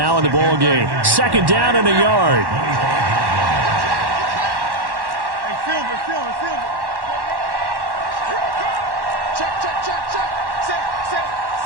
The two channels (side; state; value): left; late; 1.1 ms